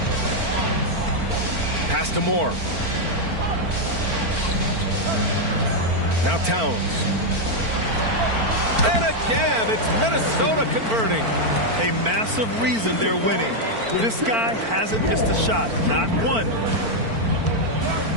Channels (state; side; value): late; left; 4.4 ms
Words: Pass to Moore. Now Towns. And again, it's Minnesota converting. A massive reason they're winning. This guy hasn't missed a shot, not one.